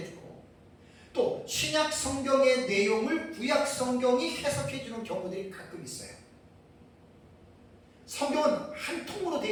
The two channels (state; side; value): identical; both; correlation 1.00